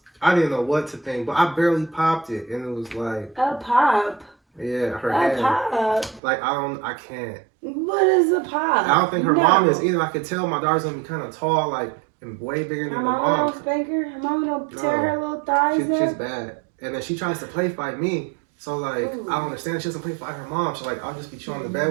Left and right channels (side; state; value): left; drops out; at 6.2 s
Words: I didn't know what to think, but I barely popped it, and it was like a pop. Yeah, her hand. A pop. Like I can't. What is a pop? I don't think her mom is either. I could tell my daughter's gonna be kind of tall, like and way bigger than her mom. Her mom don't spank her. Her mom don't tear her little thighs up. She's bad, and then she tries to play fight me. So like I don't understand. She doesn't play fight her mom. So like I'll just be chilling in the